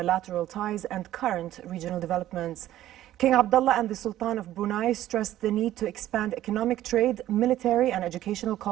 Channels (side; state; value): left; quieter; 13.4 dB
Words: ties and current regional developments. King Abdullah and the Sultan of Brunei stressed the need to expand economic trade, military and educational